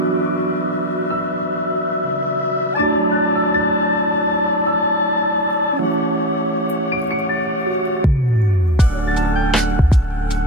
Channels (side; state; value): both; normal; correlation 0.21